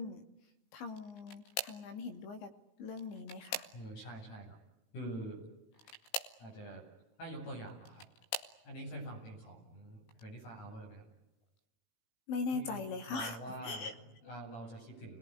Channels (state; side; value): late; right; 18 ms